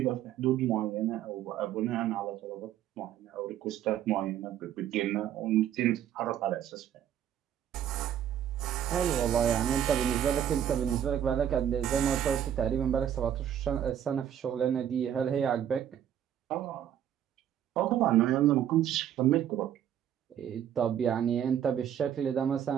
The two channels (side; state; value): left; quieter; 10.1 dB